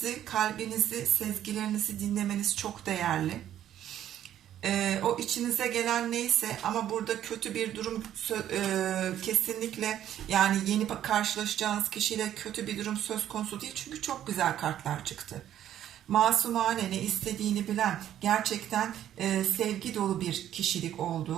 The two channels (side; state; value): left; quieter; 11.2 dB